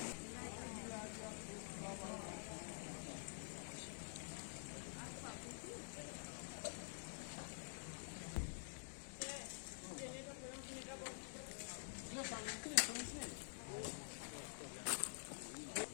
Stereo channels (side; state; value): right; silent; digital silence